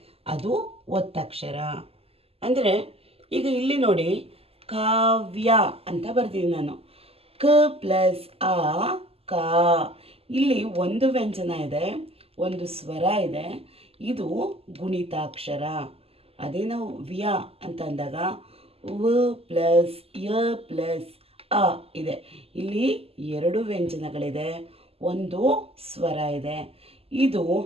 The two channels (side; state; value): left; late; 0.29 ms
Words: ಅದು ಒತ್ತಕ್ಷರ. ಅಂದರೆ ಈಗ ಇಲ್ಲಿ ನೋಡಿ, ಕಾವ್ಯ ಅಂತ ಬರ್ತೀನಿ ನಾನು. ಕ ಪ್ಲಸ್ ಆ ಕಾ. ಇಲ್ಲಿ ಒಂದು ವ್ಯಂಜನ ಇದೆ, ಒಂದು ಸ್ವರ ಇದೆ, ಇದು ಗುಣಿತಾಕ್ಷರ. ಅದೇ ನಾವು ವ್ಯ ಅಂತ ಅಂದಾಗ ವ ಪ್ಲಸ್ ಯ ಪ್ಲಸ್ ಅ ಇದೆ. ಇಲ್ಲಿ ಎರಡು ವ್ಯಂಜನಗಳಿದೆ, ಒಂದು ಸ್ವರ ಇದೆ, ಇದು